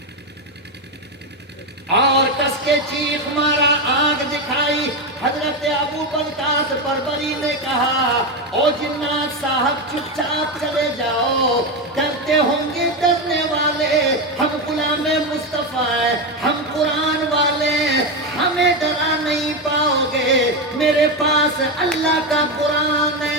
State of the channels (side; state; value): both; normal; correlation 0.12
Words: کے چیخ مارا، آنکھ دکھائی۔ حضرت ابو برکات بربری نے کہا او جنات صاحب چپ چاپ چلے جاؤ، ڈرتے ہوں گے ڈرنے والے، ہم غلام مصطفیٰ ہیں، ہم قرآن والے ہیں، ہمیں ڈرا نہیں پاؤ گے، میرے پاس اللہ کا قرآن